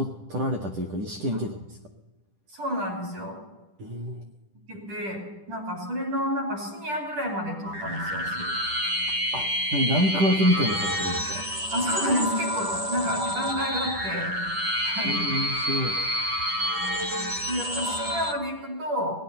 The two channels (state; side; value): late; left; 10 ms